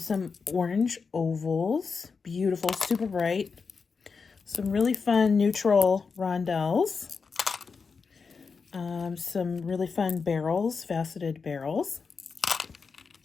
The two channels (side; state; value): right; quieter; 5.1 dB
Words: orange ovals. Beautiful, super bright. Some really fun neutral rondelles. Some really fun barrels, faceted barrels.